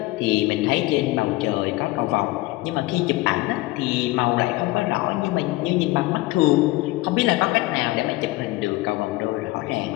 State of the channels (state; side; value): quieter; right; 19.8 dB